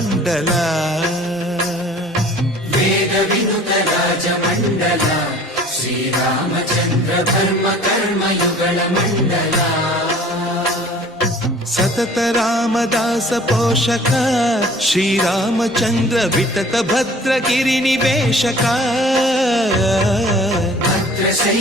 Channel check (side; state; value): both; normal; correlation 0.49